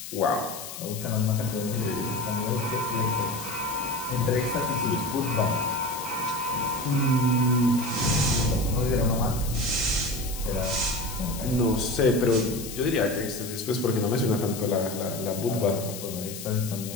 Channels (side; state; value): left; noise; hiss, 10 dB below the sound